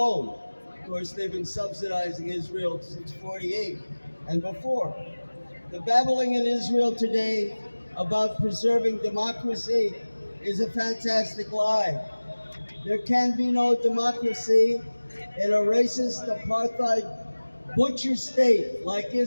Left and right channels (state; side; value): inverted; both; correlation -1.00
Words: Of course, they've been subsidizing Israel since '48 and before. The babbling in Israel today about preserving democracy is a fantastic lie. There can be no democracy in a racist, apartheid, butcher state like